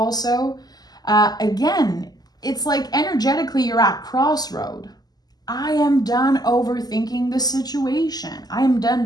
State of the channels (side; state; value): right; late; 0.19 ms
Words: Again, it's like energetically you're at crossroad. I am done overthinking the situation. I am